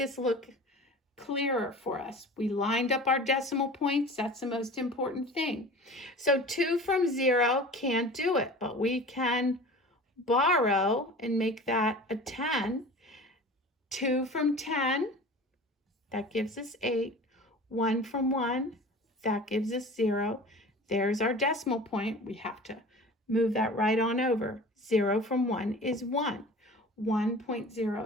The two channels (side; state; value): both; normal; correlation 0.39